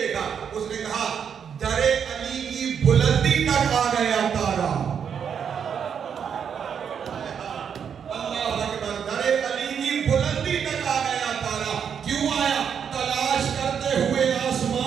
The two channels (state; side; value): quieter; left; 7.5 dB